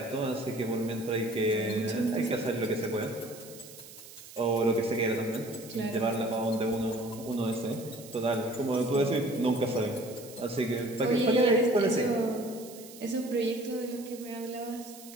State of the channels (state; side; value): noise; right; hiss, 17 dB below the sound